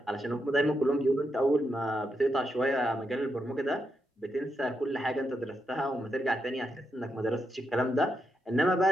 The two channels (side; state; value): both; normal; correlation 0.83